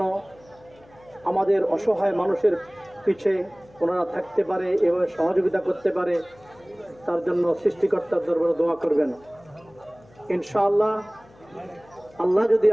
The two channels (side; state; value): left; noise; hum, 27 dB below the sound